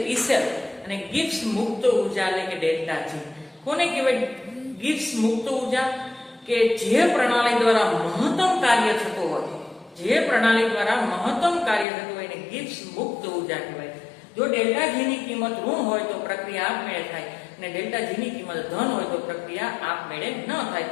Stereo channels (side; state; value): right; drops out; at 11.9 s